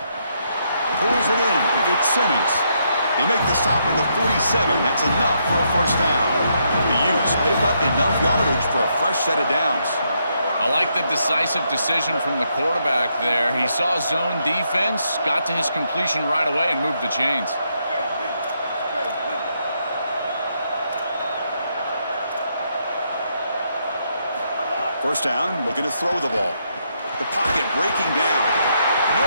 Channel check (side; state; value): both; inverted; correlation -0.77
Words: Pulls it in. It's Simmons. They make the stop at the 47. That's enough for a 1st down. The Utes pick up enough yardage for a fresh set of downs. I like the decisive decision from the quarterback there. He saw zone defense, got to his completion right away, and moved the chains. First down, looking to throw the ball. The pocket breaking down.